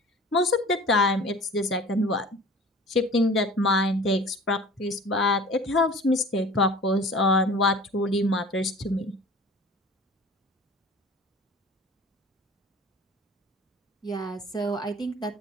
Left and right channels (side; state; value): both; normal; correlation 0.43